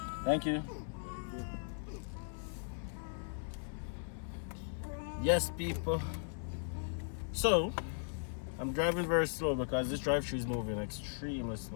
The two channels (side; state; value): right; silent; 53 dB below the other